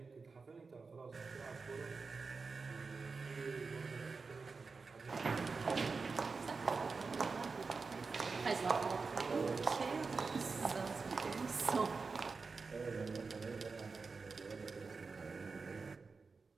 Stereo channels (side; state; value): left; quieter; 4.5 dB